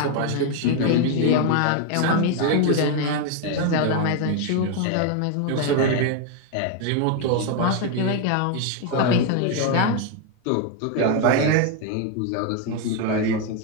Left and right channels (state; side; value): different; both; correlation 0.01